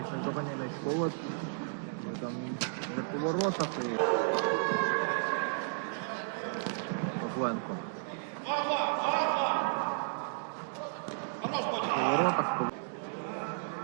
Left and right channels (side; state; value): left; silent; digital silence